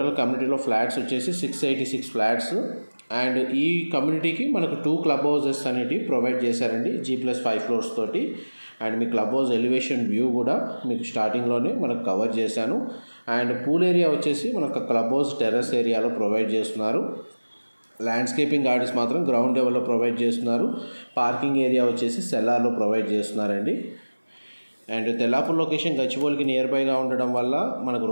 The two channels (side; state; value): both; inverted; correlation -1.00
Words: కమ్యూనిటీలో ఫ్లాట్స్ వచ్చేసి 686 ఫ్లాట్స్. అండ్ ఈ కమ్యూనిటీకి మనకు 2 క్లబ్ హౌసెస్ అనేవి ప్రొవైడ్ చేశారండి G+5 ఫ్లోర్స్ తోటి. And me club house elevation view కూడా మీకు స్టార్టింగ్లోనే మనకు కవర్ చేశాను. అండ్ పూల్ ఏరియా వచ్చేసి మనకు క్లబ్ హౌస్ టెర్రస్ ఏరియాలో ప్రొవైడ్ చేస్తున్నారు. ల్యాండ్స్కేపింగ్ గార్డెన్స్ మాత్రం గ్రౌండ్ లెవెల్లో ప్రొవైడ్ చేస్తున్నారు. పార్కింగ్ ఏరియా వచ్చేసి సెల్లార్లో ప్రొవైడ్ చేస్తున్నారండి. అండ్ తెల్లాపూర్ లొకేషన్ గచ్చిబౌలికి నియర్ బైగా ఉండడం వల్ల మనకు